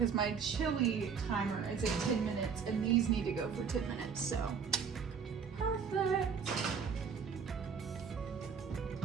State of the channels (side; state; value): left; quieter; 6.3 dB